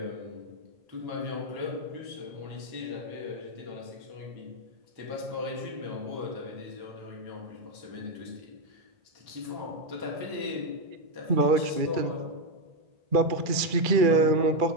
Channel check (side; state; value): left; late; 2.3 ms